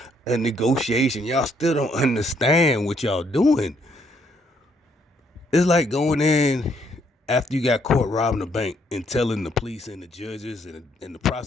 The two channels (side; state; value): both; normal; correlation 0.70